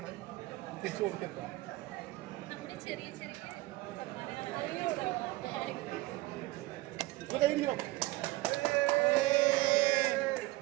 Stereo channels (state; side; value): quieter; left; 19.6 dB